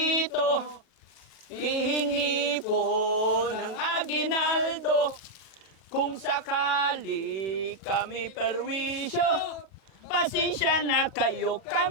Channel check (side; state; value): right; late; 38 ms